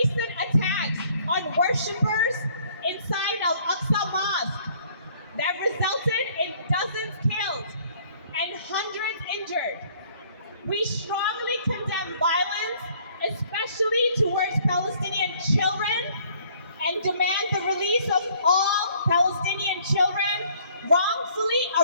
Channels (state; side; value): inverted; both; correlation -0.60